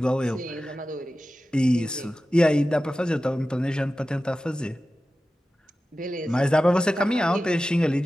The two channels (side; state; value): both; normal; correlation 0.94